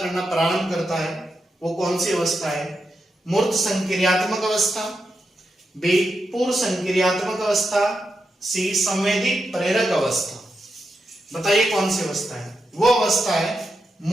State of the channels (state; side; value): normal; both; correlation 0.86